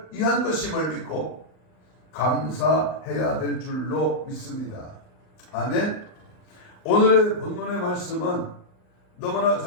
위한 것임을 믿고 감사해야 될 줄로 믿습니다. 아멘. 오늘의 본문의 말씀은 너무나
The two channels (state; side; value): late; right; 39 ms